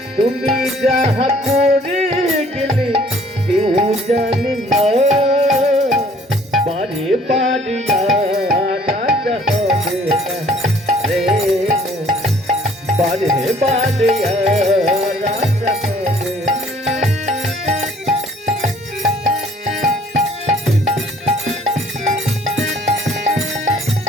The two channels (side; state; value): both; normal; correlation 0.57